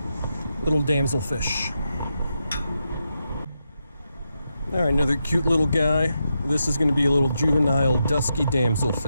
little damselfish. All right, another cute little guy. This is going to be a little juvenile dusky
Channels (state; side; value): inverted; both; correlation -0.85